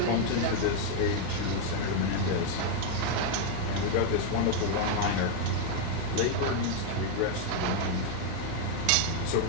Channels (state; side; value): different; both; correlation 0.00